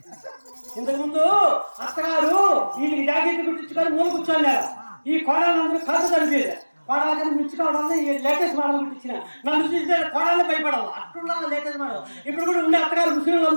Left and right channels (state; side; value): inverted; both; correlation -1.00